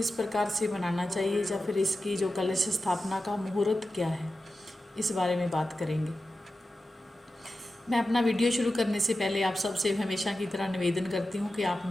प्रकार से मनाना चाहिए या फिर इसकी जो कलश स्थापना का मुहूर्त क्या है, इस बारे में बात करेंगे। मैं अपना वीडियो शुरू करने से पहले आप सबसे हमेशा की तरह निवेदन करती हूँ कि आप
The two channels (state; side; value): normal; both; correlation 0.92